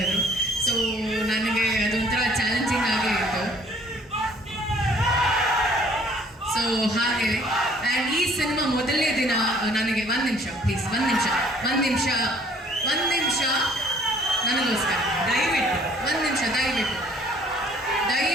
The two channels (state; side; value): normal; both; correlation 0.58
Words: ಸೊ ನನಗೆ ಅದೊಂಥರ ಚಾಲೆಂಜಿಂಗ್ ಆಗೇ ಇತ್ತು. ಸೊ ಹಾಗೆ ಆ್ಯಂಡ್ ಈ ಸಿನಿಮಾ ಮೊದಲನೇ ದಿನ ನನಗೆ ಒಂದು ನಿಮಿಷ ಪ್ಲೀಸ್, ಒಂದು ನಿಮಿಷ ನನಗೋಸ್ಕರ ದಯವಿಟ್ಟು ಒಂದು ನಿಮಿಷ